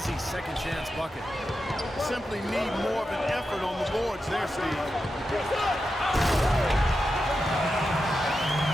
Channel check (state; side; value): normal; both; correlation 0.89